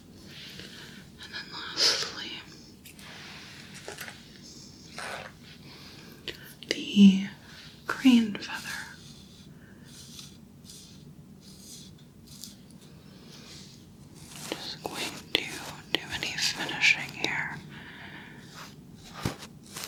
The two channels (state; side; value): identical; both; correlation 1.00